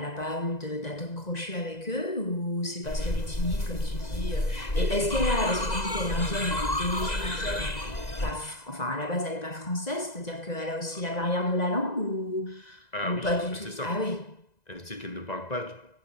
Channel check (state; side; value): late; right; 2.0 ms